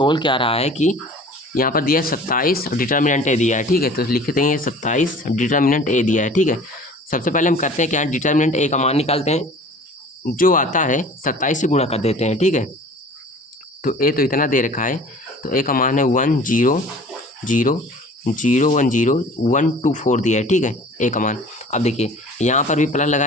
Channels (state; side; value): normal; both; correlation 0.46